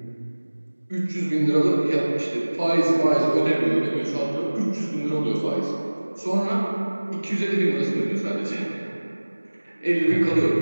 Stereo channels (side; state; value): both; inverted; correlation -1.00